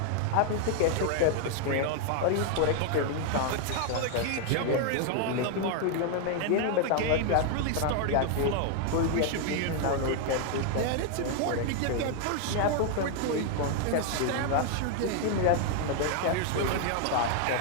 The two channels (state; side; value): different; both; correlation 0.00